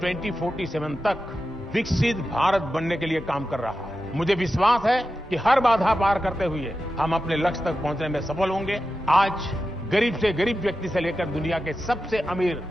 2047 तक विकसित भारत बनने के लिए काम कर रहा है। मुझे विश्वास है कि हर बाधा पार करते हुए हम अपने लक्ष्य तक पहुंचने में सफल होंगे। आज गरीब से गरीब व्यक्ति से लेकर दुनिया के सबसे अमीर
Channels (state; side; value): normal; both; correlation 0.91